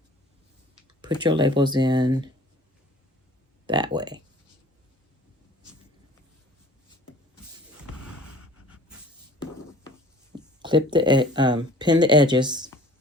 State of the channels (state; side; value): normal; both; correlation 0.49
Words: put your labels in that way. Clip the pin the edges.